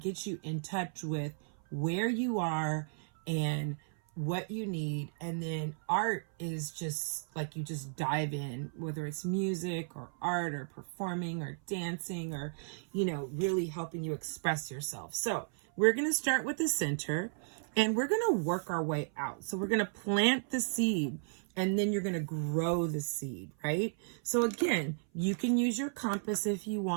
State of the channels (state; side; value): silent; left; 55 dB below the other